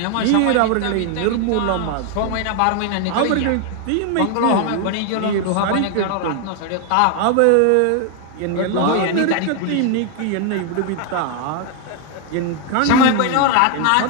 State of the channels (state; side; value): different; both; correlation 0.01